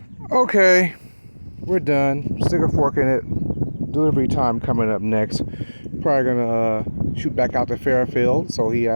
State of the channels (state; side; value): inverted; both; correlation -1.00